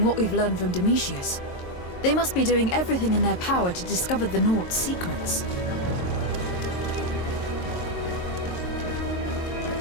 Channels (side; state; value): right; late; 22 ms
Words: what we've learned from Domitius. They must be doing everything in their power to discover the Naughts' secrets.